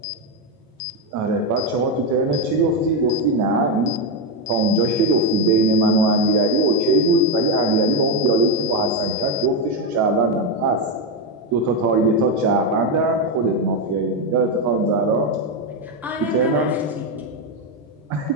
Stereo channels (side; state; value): both; normal; correlation 0.06